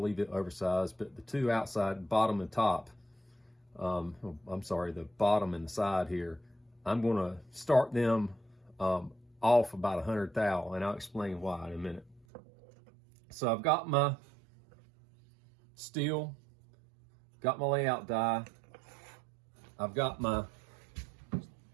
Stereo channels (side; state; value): left; drops out; at 12.2 s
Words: leave it oversized, but the 2 outside, bottom and top, I'm sorry, the bottom and the side here, I'm gonna start them off about 100 thou, and I'll explain why in a minute. So I've got my steel, got my layout die, I've got my, as